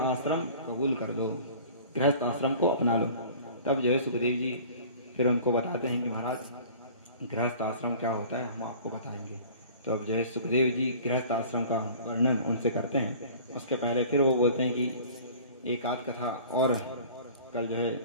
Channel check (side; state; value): both; inverted; correlation -0.45